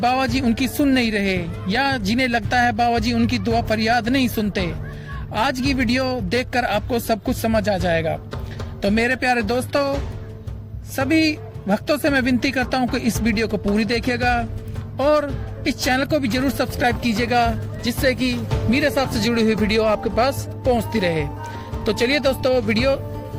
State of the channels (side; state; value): both; identical; correlation 1.00